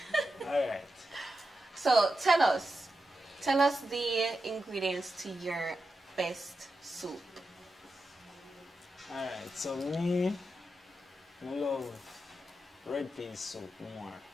Alright. So tell us the ingredients to your best soup. Alright, so me, I love red pea soup more.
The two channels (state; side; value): normal; both; correlation 0.89